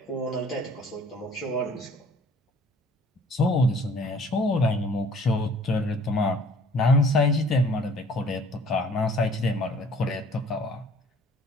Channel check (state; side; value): normal; both; correlation 0.54